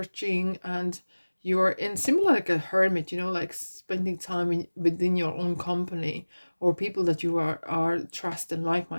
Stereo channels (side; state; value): both; inverted; correlation -1.00